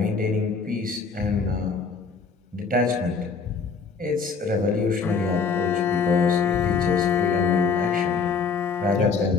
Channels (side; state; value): right; quieter; 5.2 dB